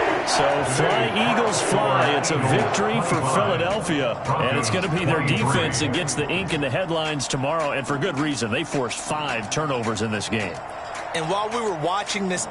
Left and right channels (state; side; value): identical; both; correlation 1.00